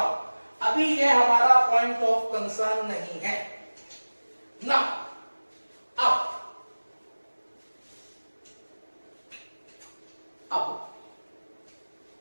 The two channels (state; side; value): inverted; both; correlation -1.00